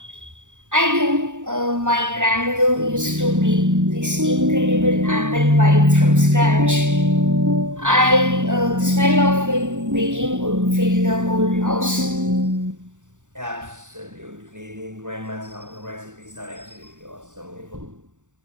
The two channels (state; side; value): late; left; 0.86 ms